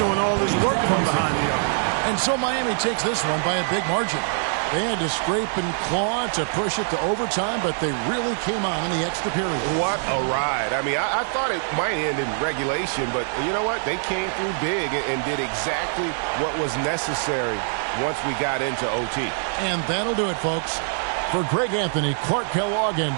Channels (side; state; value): left; silent; digital silence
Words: all his work from behind the arc. And so Miami takes this one by a big margin. They had to scrape and claw to push it to overtime, but they really came on in the extra period. What a ride. I mean, I thought it might end in regulation, but you know what? They came through big and did exactly what was necessary once we got into OT. And that'll do it, folks. For Greg Anthony, Clark Kellogg, and